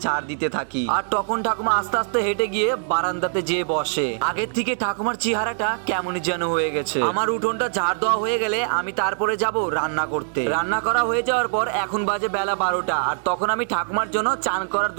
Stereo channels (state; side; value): silent; left; 63 dB below the other